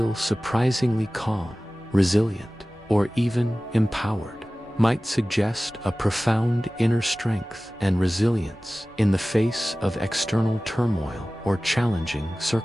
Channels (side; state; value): both; normal; correlation 0.97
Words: surprisingly calm, resilient, or even empowered might suggest a profound inner strength and resilience in the face of external turmoil or challenging